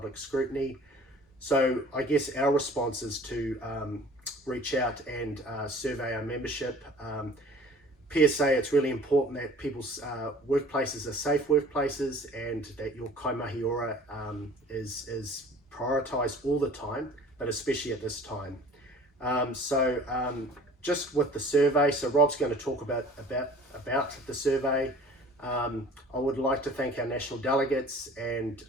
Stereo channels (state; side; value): normal; both; correlation 0.48